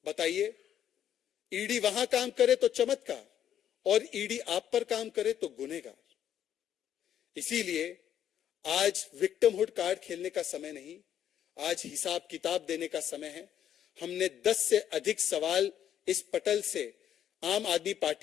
बताइए, ईडी वहां काम करे तो चमत्कार और ईडी आप पर काम करे तो गुनहगार। इसीलिए आज विक्टिमहुड कार्ड खेलने का समय नहीं, आज हिसाब किताब देने का समय है। हमने 10 से अधिक सवाल इस पटल से आम आदमी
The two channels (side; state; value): right; quieter; 10.1 dB